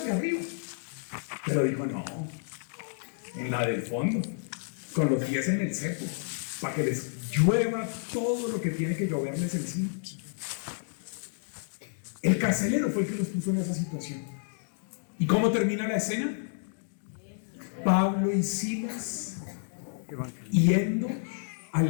de arriba. Pero dijo, no, en la del fondo, con los pies en el cepo, para que les llueva todo lo que tiene que lloverles encima. El carcelero fue el que los puso en esa situación. ¿Y cómo termina la escena? Pablo y Silas yendo a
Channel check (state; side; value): silent; right; digital silence